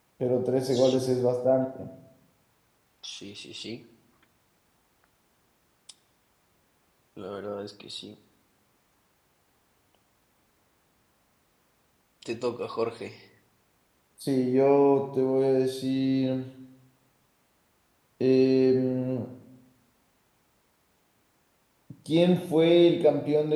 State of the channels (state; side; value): identical; both; correlation 1.00